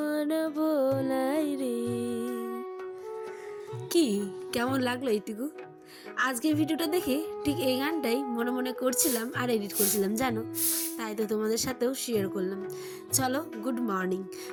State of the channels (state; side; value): identical; both; correlation 1.00